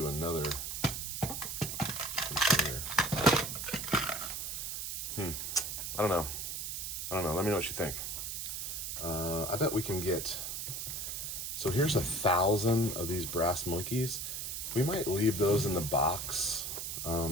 another container. I don't know. Let me know what you think. I bet we can get... So here's 1,000 of these brass monkeys. We might leave those in the box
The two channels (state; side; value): noise; right; hiss, 4 dB below the sound